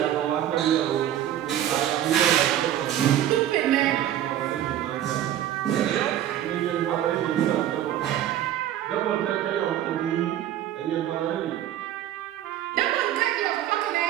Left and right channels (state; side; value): quieter; left; 11.7 dB